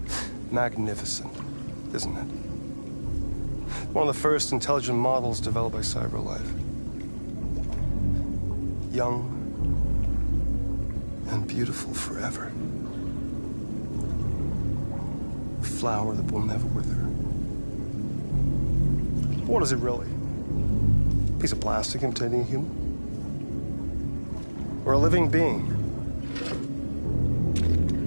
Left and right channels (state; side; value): inverted; both; correlation -1.00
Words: Magnificent, isn't it? One of the first intelligent models developed by CyberLife. Young and beautiful forever. A flower that will never wither. What is it really? A piece of plastic imitating a human? Or a living being?